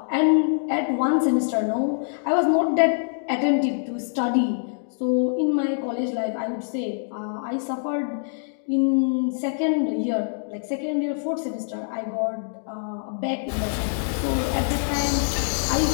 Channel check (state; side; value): silent; right; digital silence